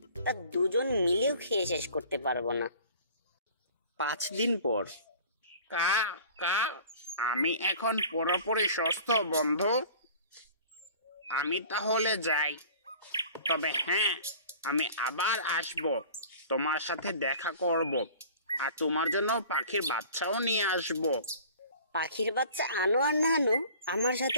তা দুজন মিলেও খেয়ে শেষ করতে পারবো না। 5 দিন পর। কা কা আমি এখন পুরোপুরি সুস্থ বন্ধু। আমি তাহলে যাই। তবে হ্যাঁ, আমি আবার আসব, তোমার সাথে দেখা করব, আর তোমার জন্য পাখির বাচ্চাও নিয়ে আসব। পাখির বাচ্চা আনো আর না আনো, আমার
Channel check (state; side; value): inverted; both; correlation -0.46